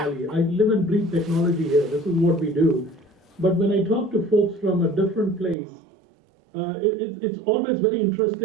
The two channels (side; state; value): left; drops out; at 5.6 s